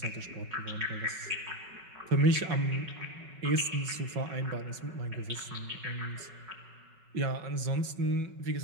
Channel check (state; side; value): late; left; 5.3 ms